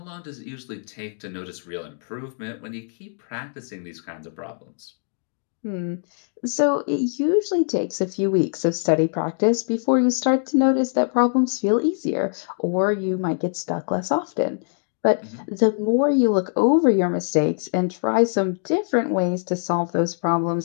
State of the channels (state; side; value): silent; right; digital silence